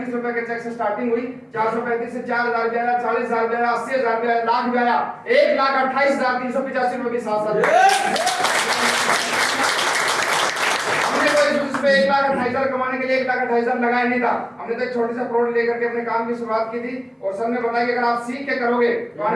रुपए के चेक से स्टार्टिंग हुई। 435 से 4,000 भी आया, 40,000 भी आया, 80,000 भी आया, लाख भी आया, 1,28,385 रुपए के साथ साथ 1,28,000 कमाने के लिए 1,28,000 लगाया नहीं था। हमने तो एक छोटी सा प्रोडक्ट लेकर के अपने काम की शुरुआत की थी। और सर ने बताया कि अगर आप सीख के करोगे तो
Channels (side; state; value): both; identical; correlation 1.00